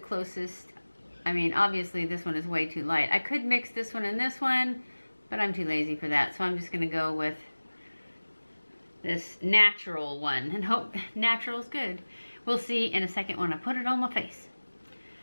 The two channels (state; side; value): inverted; both; correlation -1.00